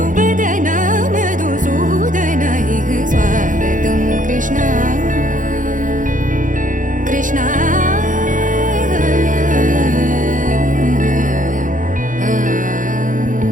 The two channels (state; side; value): late; left; 0.38 ms